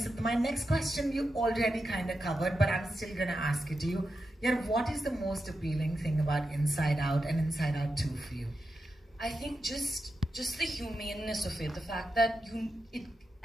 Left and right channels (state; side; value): normal; both; correlation 0.88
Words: my next question you already kind of covered, but I'm still going to ask it to you. Yeah, what is the most appealing thing about Inside Out and Inside Out 2 for you? I think just the humaneness of it, the fact that